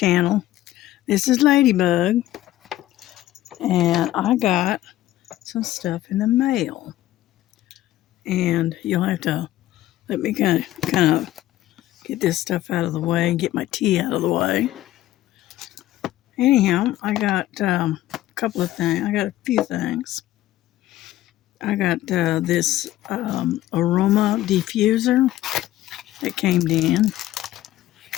This is Ladybug, and I got some stuff in the mail, and you'll have to let me kind of get this stuff out of the way and get my tea out of the way. Anyhow, I got a couple of things. I got a few things. I got this aroma diffuser that came in,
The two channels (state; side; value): quieter; right; 14.5 dB